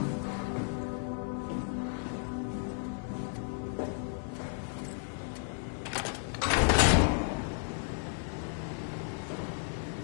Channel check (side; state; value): right; silent; 55 dB below the other